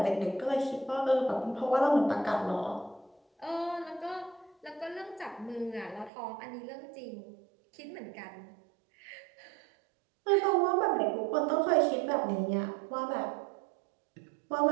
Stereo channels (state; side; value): drops out; left; at 6.1 s